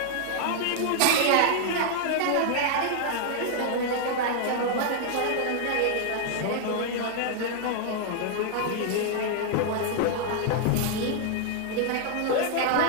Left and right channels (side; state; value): both; different; correlation 0.00